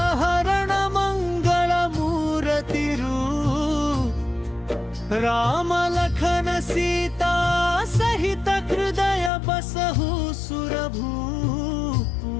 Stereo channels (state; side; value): drops out; right; at 9.3 s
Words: हरण मंगल मूर्तिरू राम लखन सीता सहित हृदय बसहु सुरभू